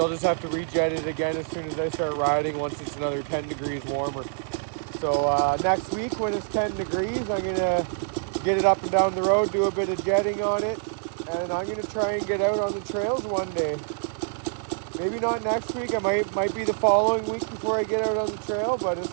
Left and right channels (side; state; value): left; silent; digital silence